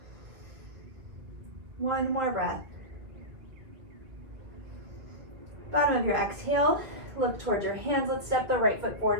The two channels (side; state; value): left; late; 2.0 ms